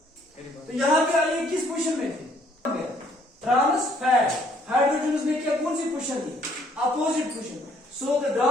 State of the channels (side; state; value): both; normal; correlation 0.64